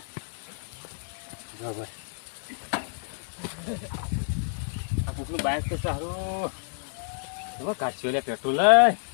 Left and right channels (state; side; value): silent; right; 59 dB below the other